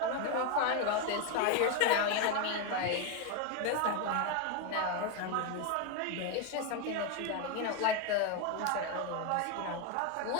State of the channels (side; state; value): both; different; correlation 0.01